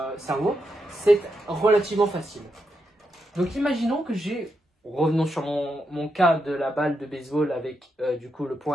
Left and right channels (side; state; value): both; normal; correlation 0.84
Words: cerveau, c'est relativement facile. Donc imaginons que revenons sur mon cas de la balle de baseball avec du coup le